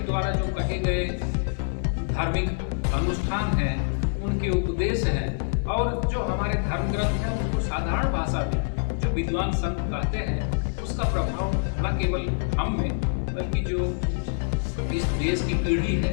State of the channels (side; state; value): right; silent; 60 dB below the other